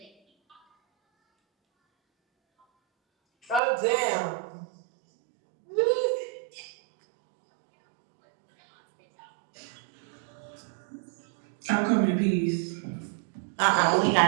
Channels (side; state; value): left; drops out; at 3.6 s